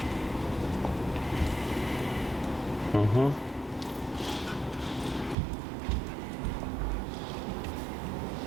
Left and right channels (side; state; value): left; drops out; at 5.4 s